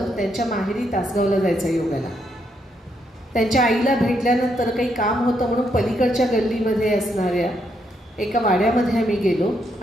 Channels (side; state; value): both; normal; correlation 0.77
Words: त्यांच्या माहेरी तासगावला जायचं योगाला. त्यांच्या आईला भेटल्यानंतर काही काम होतं म्हणून पलीकडच्या गल्लीमध्ये असणाऱ्या एका वाड्यामध्ये आम्ही गेलो